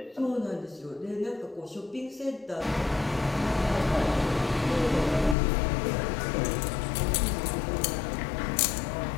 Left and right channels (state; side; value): drops out; right; at 5.4 s